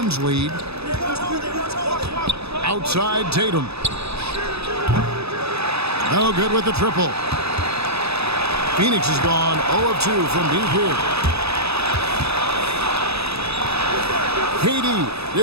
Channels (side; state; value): left; late; 0.79 ms